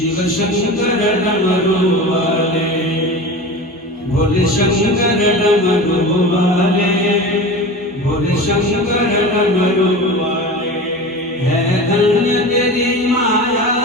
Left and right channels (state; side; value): normal; both; correlation 0.31